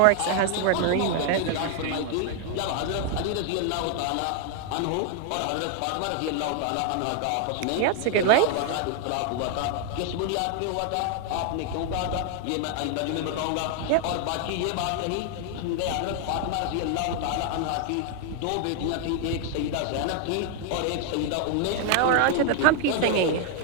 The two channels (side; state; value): both; different; correlation 0.00